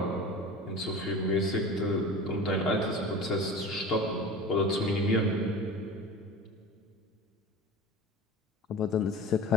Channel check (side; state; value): both; normal; correlation 0.34